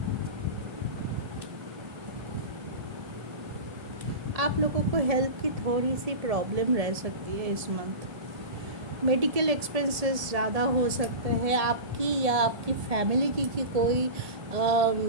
आप लोगों को हेल्थ की थोड़ी सी प्रॉब्लम रह सकती है इस मंथ। मेडिकल एक्सपेंसेस ज़्यादा हो सकते हैं आपकी या आपकी फैमिली की कोई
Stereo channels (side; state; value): left; late; 1.7 ms